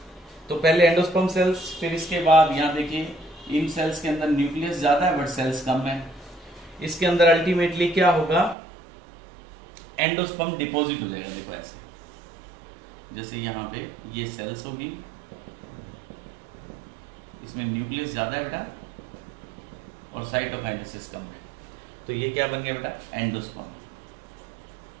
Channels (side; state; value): left; drops out; at 8.6 s